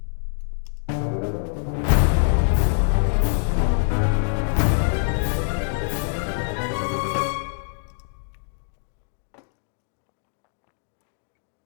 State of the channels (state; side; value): silent; right; digital silence